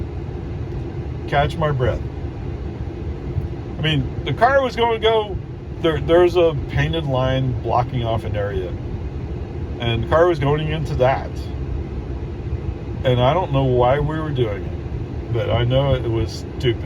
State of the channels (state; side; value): identical; both; correlation 1.00